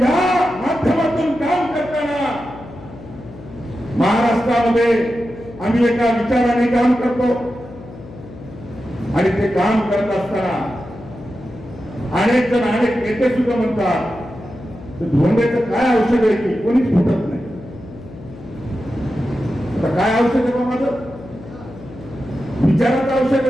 या माध्यमातून काम करताना महाराष्ट्रामध्ये आम्ही एका विचाराने काम करतो. आणि ते काम करत असताना अनेक जण, अनेक नेते सुद्धा म्हणतात धोंडेचं काय औषध आहे की कोणीच फुटत नाही. आता काय औषध आहे बा माझं? विचाराचं औषध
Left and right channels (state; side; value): noise; left; hum, 16 dB below the sound